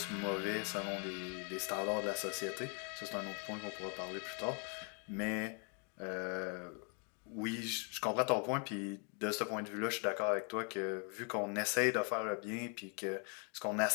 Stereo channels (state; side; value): quieter; right; 38.5 dB